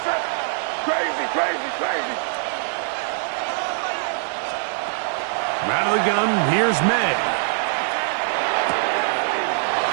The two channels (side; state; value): left; silent; 60 dB below the other